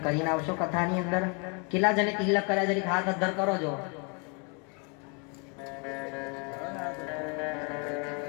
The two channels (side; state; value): right; quieter; 34.9 dB